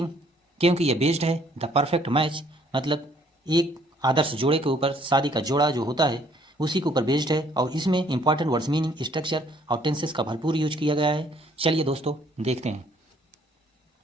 क्योंकि यह बेस्ड है द परफेक्ट मैच, मतलब एक आदर्श जोड़े के ऊपर, शादी का जोड़ा जो होता है उसी के ऊपर बेस्ड है। और इसमें इंपॉर्टेंट वर्ड्स, मीनिंग, स्ट्रक्चर और टेंसेस का भरपूर यूज किया गया है। चलिए दोस्तों देखते हैं।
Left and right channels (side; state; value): both; normal; correlation 0.63